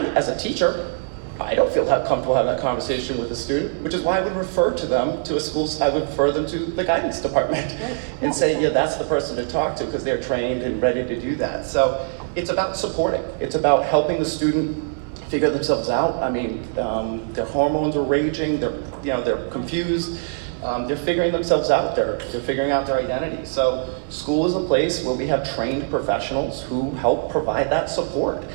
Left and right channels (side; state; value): left; silent; 64 dB below the other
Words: as a teacher, I don't feel that comfortable having that conversation with a student, which is why I would refer to them to a school. I would refer them to the guidance department and say, yeah, that's the person to talk to because they're trained and ready to do that. So it's about supporting. It's about helping the student figure themselves out. I mean, their hormones are raging. They're confused. They're figuring themselves out. They're figuring out their identity. So school is a place where we have trained professionals who help provide that support.